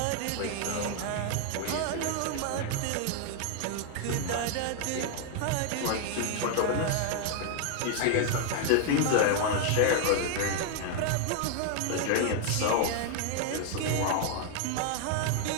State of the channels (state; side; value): different; both; correlation 0.00